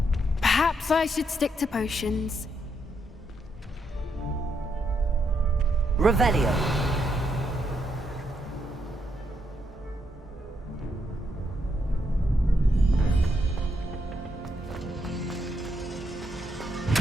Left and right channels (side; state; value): both; normal; correlation 0.78